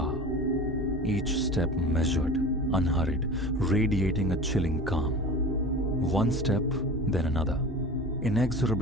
Each step measured, unhurried, radiating a chilling calm. One step, then another,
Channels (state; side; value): normal; both; correlation 0.35